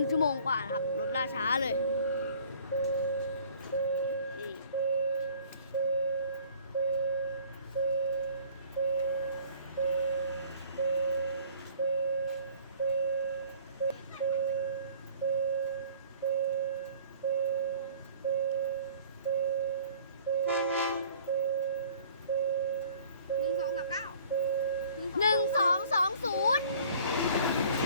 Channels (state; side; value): inverted; both; correlation -0.52